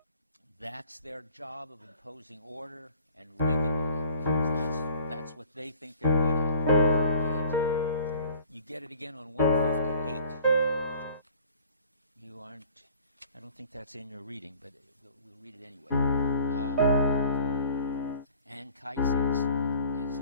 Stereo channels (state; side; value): inverted; both; correlation -0.50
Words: That's their job of imposing order and regulating. That's what they think they're good at. And you get it again on 158. You aren't, I don't think that's in your reading, but we'll read it anyway. Anchises is